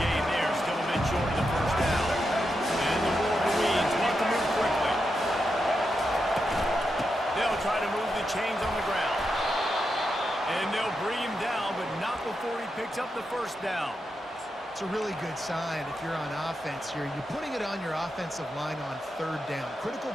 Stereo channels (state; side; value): normal; both; correlation 0.86